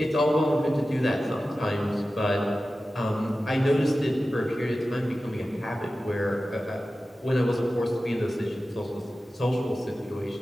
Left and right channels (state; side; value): normal; both; correlation 0.94